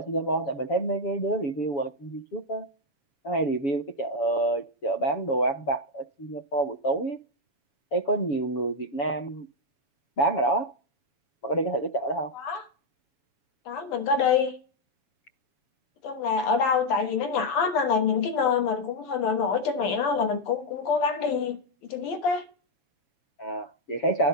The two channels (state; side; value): late; right; 7.1 ms